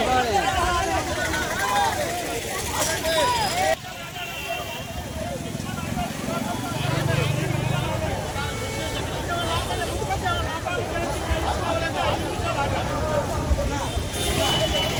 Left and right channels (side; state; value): both; identical; correlation 1.00